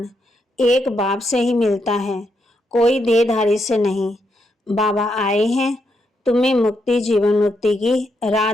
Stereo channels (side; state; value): both; normal; correlation 0.80